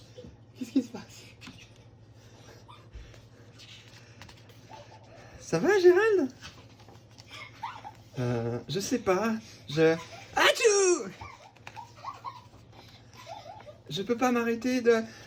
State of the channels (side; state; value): both; identical; correlation 1.00